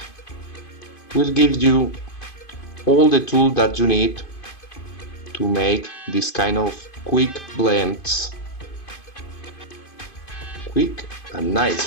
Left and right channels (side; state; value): right; late; 2.5 ms